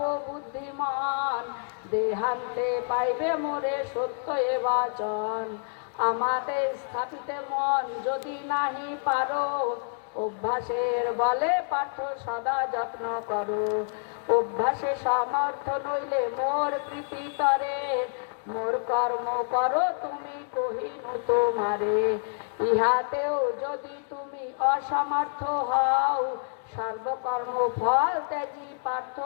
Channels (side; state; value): right; silent; digital silence